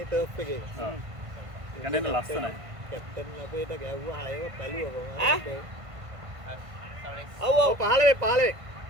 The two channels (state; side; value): late; left; 1.5 ms